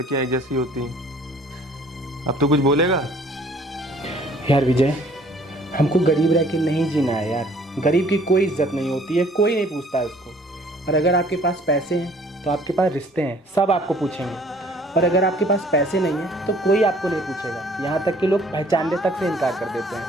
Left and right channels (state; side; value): normal; both; correlation 0.57